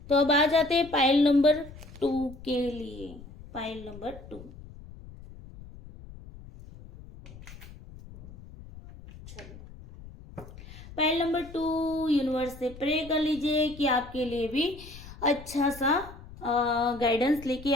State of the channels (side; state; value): left; noise; rumble, 17 dB below the sound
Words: तो अब आ जाते हैं पाइल नंबर 2 के लिए। पाइल नंबर 2, चलो, पाइल नंबर 2 यूनिवर्स से प्रे कर लीजिए कि आपके लिए भी अच्छा सा गाइडेंस लेके